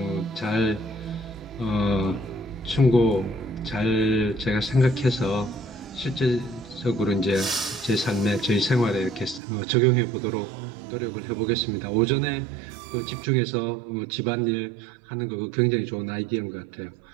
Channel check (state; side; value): drops out; left; at 9.4 s